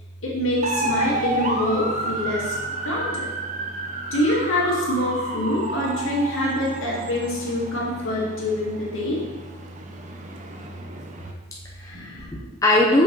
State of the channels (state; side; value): normal; both; correlation 0.26